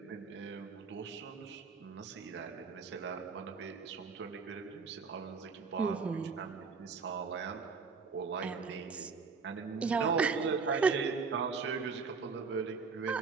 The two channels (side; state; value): left; quieter; 5.0 dB